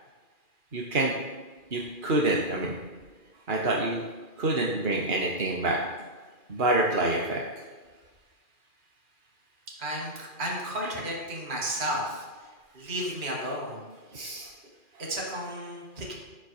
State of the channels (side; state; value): left; late; 2.4 ms